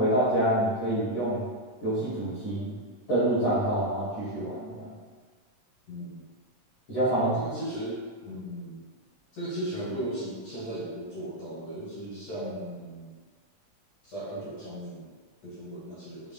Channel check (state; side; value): late; right; 13 ms